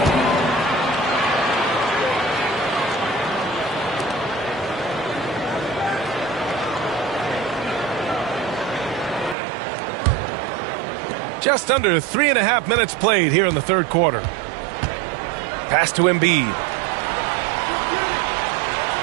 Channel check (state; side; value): drops out; left; at 9.3 s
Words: Just under 3.5 minutes played here in the third quarter. Pass to Embiid.